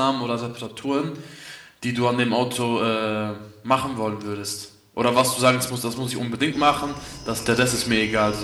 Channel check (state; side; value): identical; both; correlation 1.00